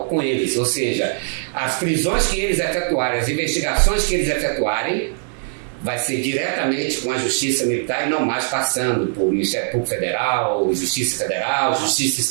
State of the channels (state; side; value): silent; left; 65 dB below the other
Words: com eles. Ou seja, as prisões que eles efetuarem, as investigações que eles efetuarem, vai ser diretamente com a Justiça Militar e não mais passando por Ministério Público Federal, Justiça Federal, Justiça